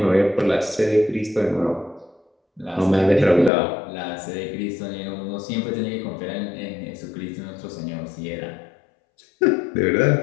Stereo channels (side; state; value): right; drops out; at 3.5 s